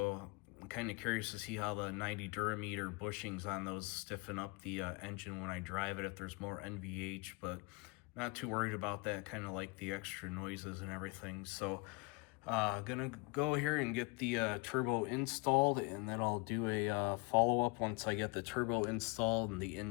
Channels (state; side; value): quieter; right; 28.7 dB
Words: I'm kind of curious to see how the 90 Durameter bushings on those stiffen up the engine when I drive it, if there's more NVH, but not too worried about that. Kind of like the extra noises and everything. So gonna go here and get the turbo installed, and then I'll do a follow-up once I get the turbo installed and the